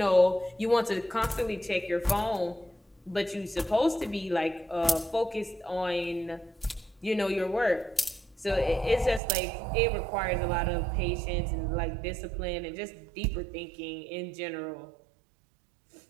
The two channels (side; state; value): left; drops out; at 9.2 s